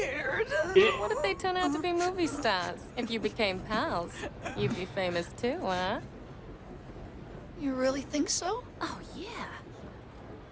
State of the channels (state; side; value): identical; both; correlation 1.00